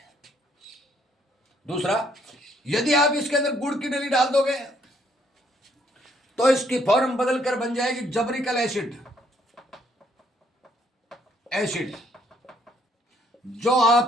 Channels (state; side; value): normal; both; correlation 0.68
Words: दूसरा, यदि आप इसके अंदर गुड़ की डली डाल दोगे तो इसकी फॉर्म बदलकर बन जाएगी जबरिकल एसिड, एसिड जो